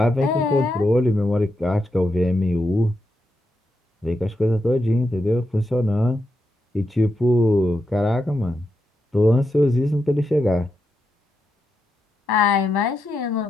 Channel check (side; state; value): both; normal; correlation 0.85